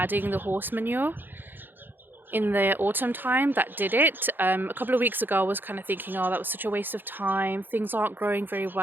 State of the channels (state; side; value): late; left; 0.094 ms